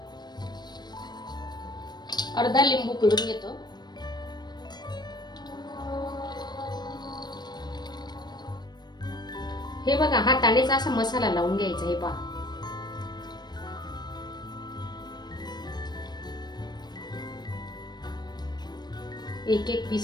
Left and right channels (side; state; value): right; late; 0.20 ms